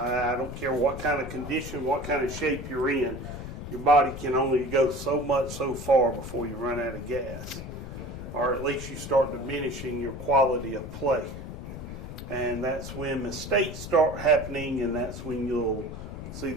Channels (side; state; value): left; noise; rumble, 9 dB below the sound